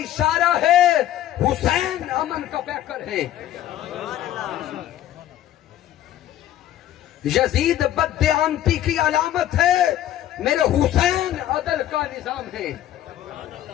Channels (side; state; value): right; quieter; 12.5 dB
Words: है, हुसैन अमन का पैकर है। यजीद बददियांती की अलामत है, मेरे हुसैन अदल का निजाम है।